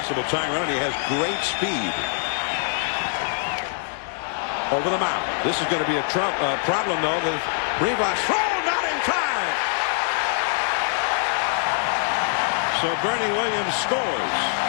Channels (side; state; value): right; silent; 63 dB below the other